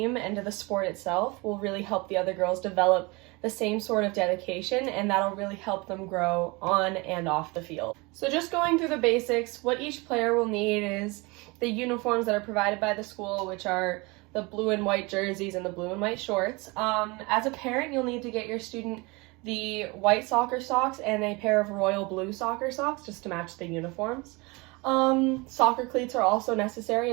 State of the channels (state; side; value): quieter; left; 25.9 dB